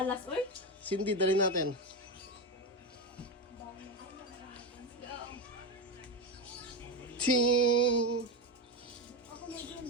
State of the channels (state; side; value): normal; both; correlation 0.15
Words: uy. Cindy, dali natin. Ting!